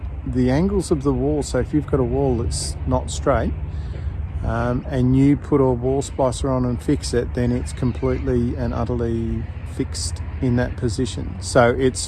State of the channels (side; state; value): both; identical; correlation 1.00